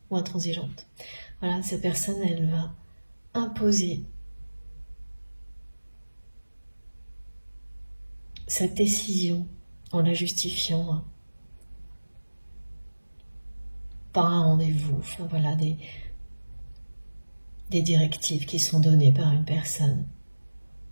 ou intransigeante. Voilà, cette personne, elle va imposer sa décision en la justifiant par un rendez-vous. Enfin, voilà, des directives qui sont données par une personne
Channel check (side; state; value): both; inverted; correlation -1.00